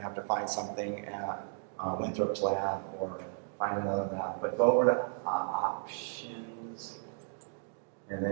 have to find something at Winthrop's lab or find another lab. But go over to options, and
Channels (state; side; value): silent; left; digital silence